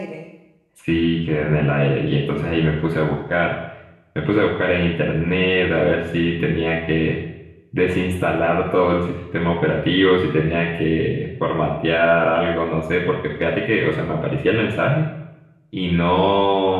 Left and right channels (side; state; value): both; identical; correlation 1.00